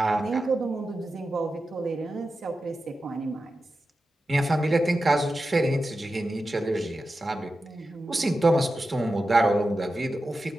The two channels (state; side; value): normal; both; correlation 0.92